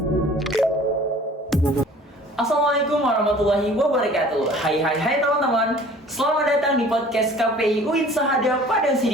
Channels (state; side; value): normal; both; correlation 0.48